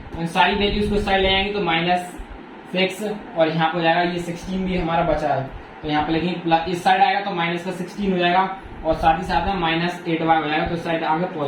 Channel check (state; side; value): identical; both; correlation 1.00